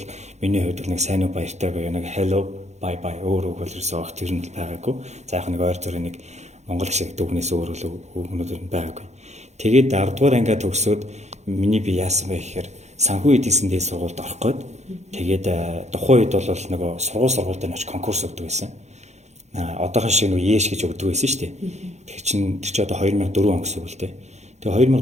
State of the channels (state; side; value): late; left; 0.33 ms